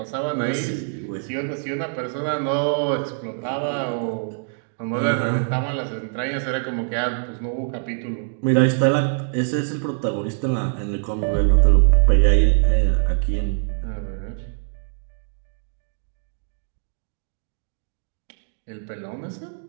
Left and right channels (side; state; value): left; silent; digital silence